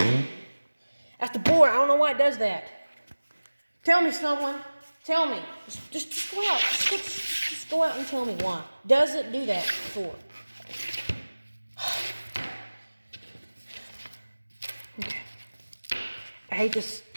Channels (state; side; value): inverted; both; correlation -1.00